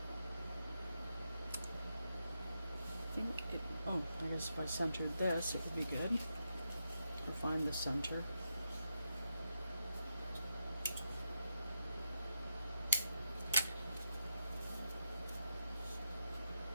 I think it, oh, I guess if I centered this, it would be good. I'll find the center.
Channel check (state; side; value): inverted; both; correlation -0.85